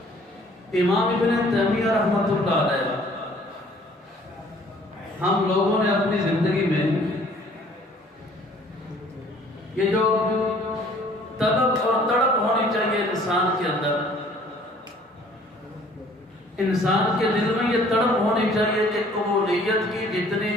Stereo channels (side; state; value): both; normal; correlation 0.56